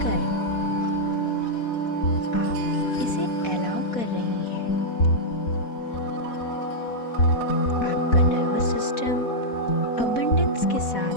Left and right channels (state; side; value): late; right; 4.1 ms